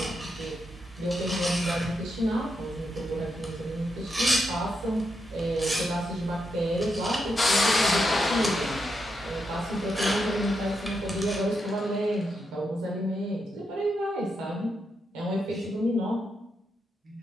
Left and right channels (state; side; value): normal; both; correlation 0.83